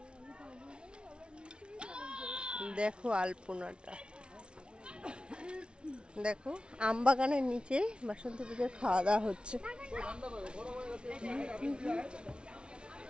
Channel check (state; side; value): late; left; 0.057 ms